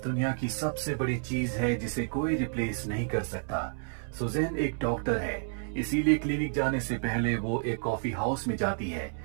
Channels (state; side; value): silent; left; 58 dB below the other